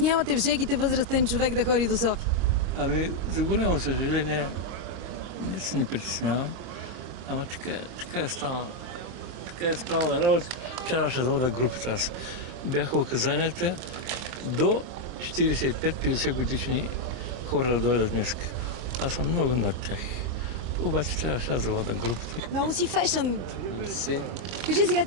в жегите възрастен човек да ходи до София? Ами, за голямо съжаление, не се ни притеснявам, ама така е станало. Така е станала работа. Трябваше да вода групата аз. Бяха указанията до 45-50 годишни хора да дойдат днес. Аз съм много над тях. Обаче трябваше аз да вода групата. Много си фешън. Си. Кажи сега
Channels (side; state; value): left; late; 25 ms